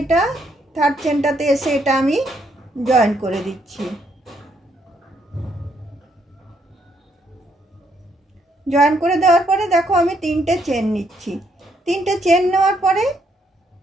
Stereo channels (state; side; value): normal; both; correlation 0.73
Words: এটা থার্ড চেনটাতে এসে এটা আমি জয়েন করে দিচ্ছি। জয়েন করে দেওয়ার পরে দেখো, আমি 3টে চেন নিচ্ছি। 3টে চেন নেওয়ার পরে